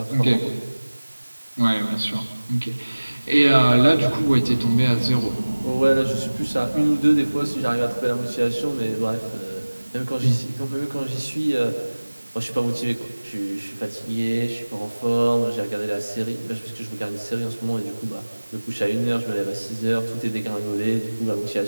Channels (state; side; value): inverted; both; correlation -1.00